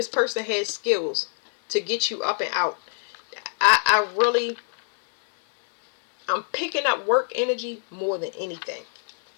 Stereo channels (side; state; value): right; silent; 62 dB below the other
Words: person has skills to get you up and out. I'm picking up work energy more than anything.